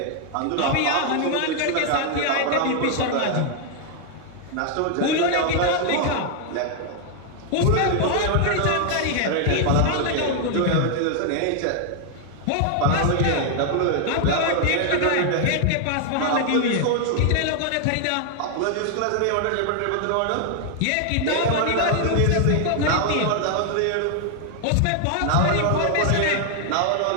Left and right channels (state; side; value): different; both; correlation 0.00